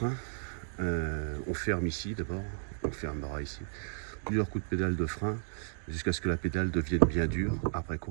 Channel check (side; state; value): left; silent; digital silence